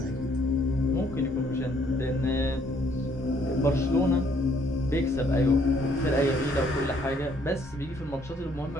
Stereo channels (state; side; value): normal; both; correlation 0.65